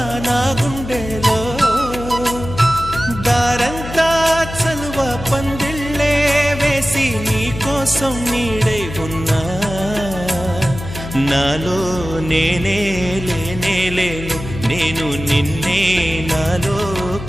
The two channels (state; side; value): noise; left; hum, 10 dB below the sound